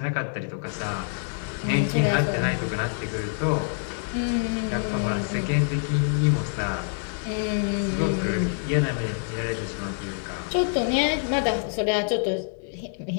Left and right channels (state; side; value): silent; right; 61 dB below the other